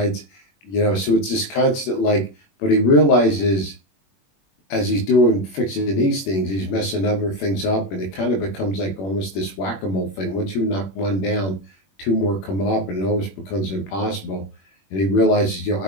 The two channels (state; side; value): late; right; 21 ms